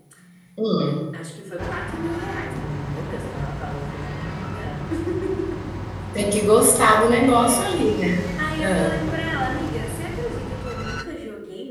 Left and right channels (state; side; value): identical; both; correlation 1.00